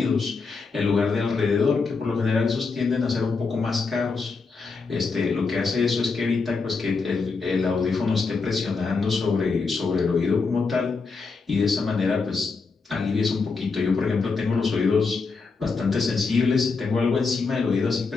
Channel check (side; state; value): right; quieter; 4.5 dB